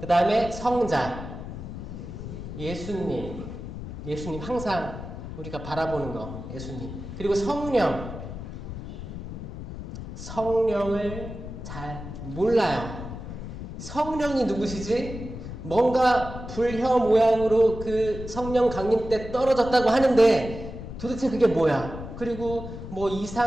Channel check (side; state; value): left; noise; rumble, 9 dB below the sound